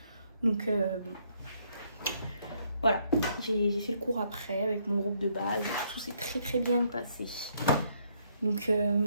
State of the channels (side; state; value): both; inverted; correlation -0.71